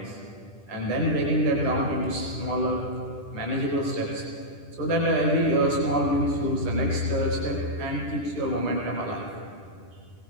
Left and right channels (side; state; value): right; late; 10 ms